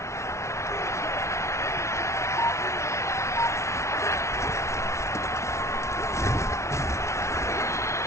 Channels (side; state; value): right; late; 0.13 ms